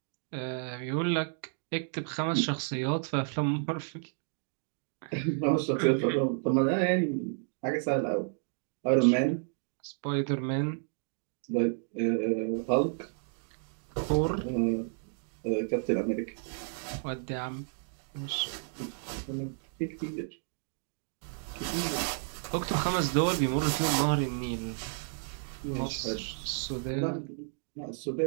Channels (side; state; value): left; silent; digital silence